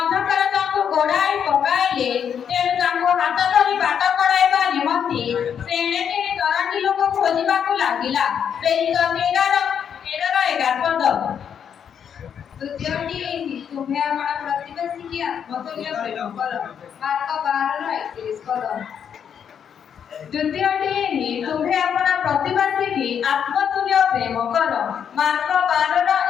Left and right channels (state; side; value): quieter; right; 8.0 dB